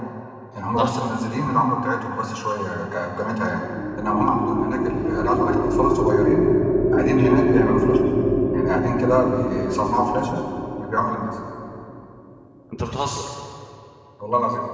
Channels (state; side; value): identical; both; correlation 1.00